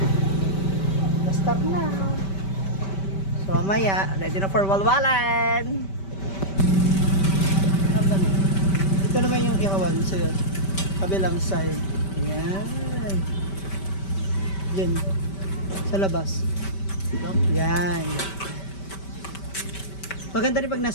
Start na. So mamaya, ready na for walwalan. Ito naman yung ihawan sa'yo. Kabilang side. Yan. Yan. Sa labas. Yan. Maganda rin pag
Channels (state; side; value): late; right; 5.2 ms